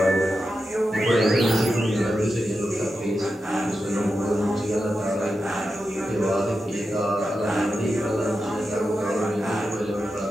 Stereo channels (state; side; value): normal; both; correlation 0.89